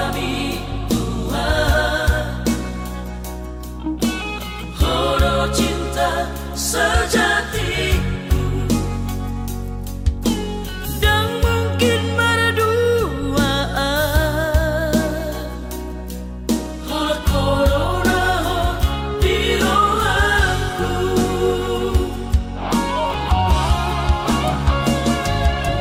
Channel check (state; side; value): identical; both; correlation 1.00